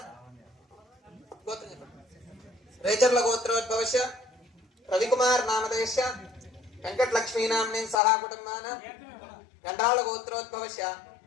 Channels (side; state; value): right; drops out; at 8.0 s